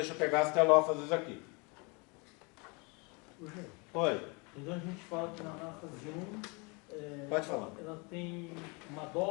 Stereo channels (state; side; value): quieter; right; 30.1 dB